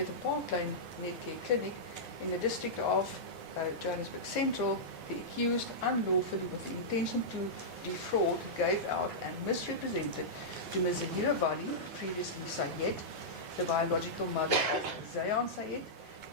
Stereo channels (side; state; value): both; normal; correlation -0.12